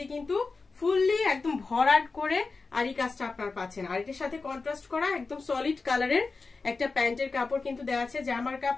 কিন্তু ফুললি একদম ভরাট করে আরি কাজটা আপনার পাচ্ছেন। আর এটার সাথে কন্ট্রাস্ট করা একদম সলিড কালারের একটা প্যান্টের কাপড় কিন্তু দেওয়া আছে। জামার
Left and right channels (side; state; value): right; quieter; 4.1 dB